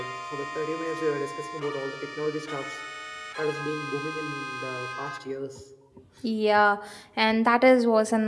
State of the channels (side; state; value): both; identical; correlation 1.00